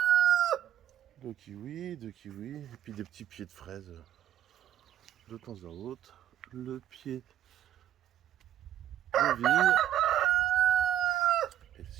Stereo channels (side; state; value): left; quieter; 11.6 dB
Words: Deux kiwis, et puis des petits pieds de fraises de temps à autre. Le pied de vigne. Et